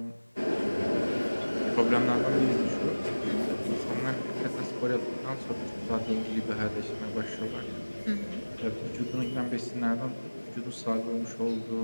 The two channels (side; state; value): both; inverted; correlation -1.00